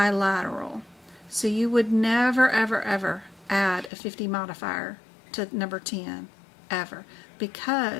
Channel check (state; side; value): drops out; right; at 3.9 s